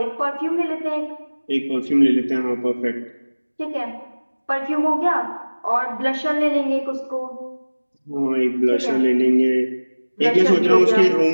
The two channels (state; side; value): inverted; both; correlation -1.00